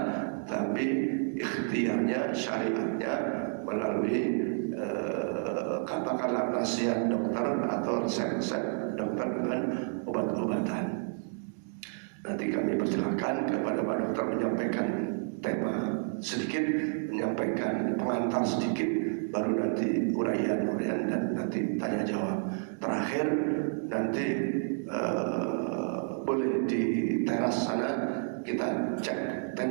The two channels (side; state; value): left; silent; 58 dB below the other